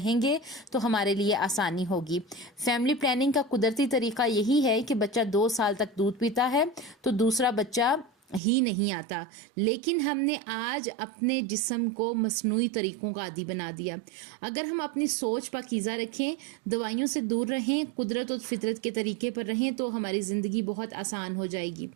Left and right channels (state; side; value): drops out; left; at 8.4 s